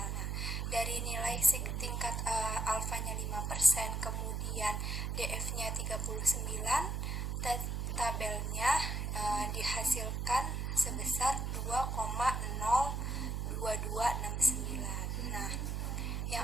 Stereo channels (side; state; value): right; noise; hum, 1 dB below the sound